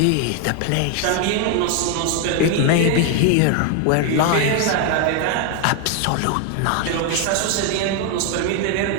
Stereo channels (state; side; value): different; both; correlation 0.01